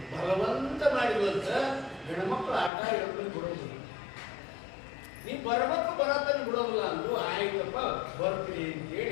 ಬಲವಂತ ಮಾಡಿರುವಂತ ಹೆಣ್ಮಕ್ಳು ಆಟ ಹೇಳ್ಕೊಂಡು ಬಿಡೋದಿಲ್ಲ. ನೀ ಬರ್ಬೇಕು ಬರತ್ತಾನೆ ಬಿಡೋದಿಲ್ಲ ಅಂದ್ರು. ಆಯ್ತಪ್ಪ ಬರ್ತೀನಿ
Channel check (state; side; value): drops out; right; at 2.7 s